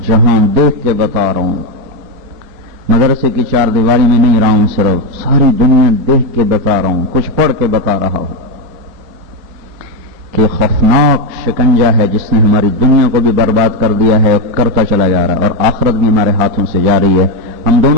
جہان دیکھ کے بتا رہا ہوں، مدرسے کی چار دیواری میں نہیں رہا ہوں، صرف ساری دنیا دیکھ کے بتا رہا ہوں، کچھ پڑھ کے بتا رہا ہوں کہ خوفناک شکنجہ ہے جس نے ہماری دنیا کو بھی برباد کر دیا ہے، کرتا چلا جا رہا ہے، اور آخرت بھی ہمارے ہاتھوں سے جا رہی ہے۔ ہم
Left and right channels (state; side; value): late; left; 4.1 ms